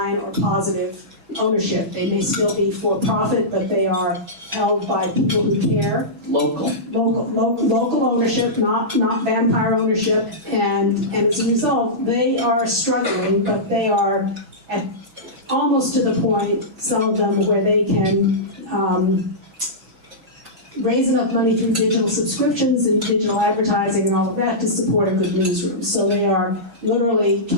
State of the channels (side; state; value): left; late; 6.1 ms